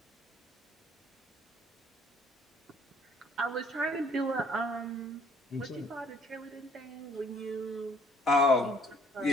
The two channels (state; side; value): normal; both; correlation 0.59